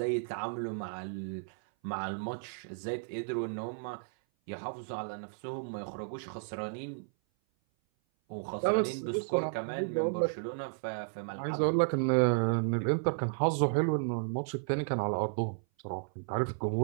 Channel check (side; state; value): left; silent; 56 dB below the other